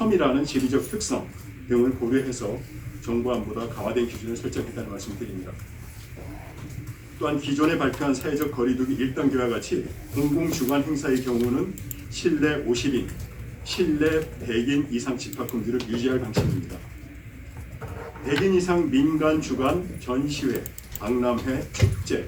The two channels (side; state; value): both; identical; correlation 1.00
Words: 지리적 특성 등을 고려해서 정부안보다 강화된 기준을 설정했다는 말씀드립니다. 또한 기존에 발표한 사회적 거리두기 1단계와 같이 공공주관 행사의 경우는 실내 50인, 실내 100인 이상 집합 금지를 유지할 방침입니다. 100인 이상 민간 주관 전시회, 박람회,